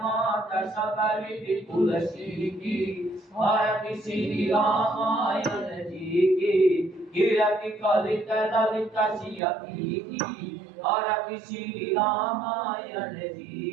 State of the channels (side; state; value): left; drops out; at 9.4 s